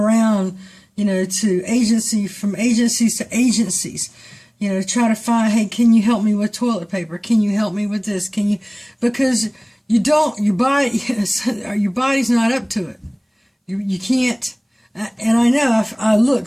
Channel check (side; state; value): both; identical; correlation 1.00